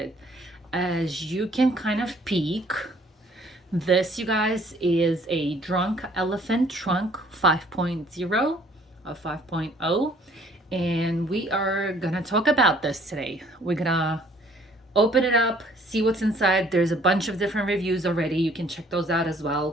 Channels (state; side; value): normal; both; correlation 0.59